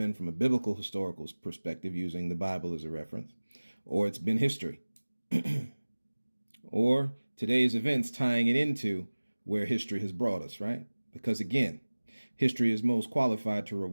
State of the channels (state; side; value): inverted; both; correlation -1.00